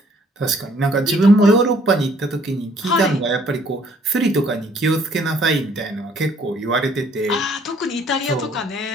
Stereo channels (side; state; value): both; normal; correlation 0.62